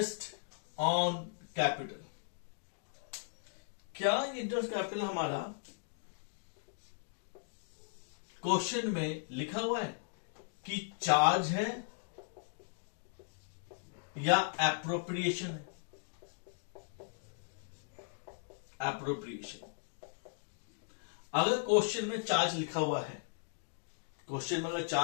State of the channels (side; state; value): right; silent; digital silence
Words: ऑन कैपिटल, क्या इंटरेस्ट कैपिटल हमारा क्वेश्चन में लिखा हुआ है कि चार्ज है या एप्रोप्रिएशन है। एप्रोप्रिएशन, अगर क्वेश्चन में चार्ज लिखा हुआ है, क्वेश्चन में अगर